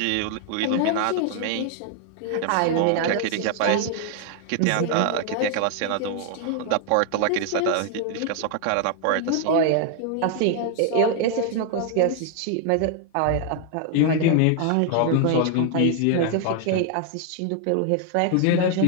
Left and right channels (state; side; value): different; both; correlation 0.00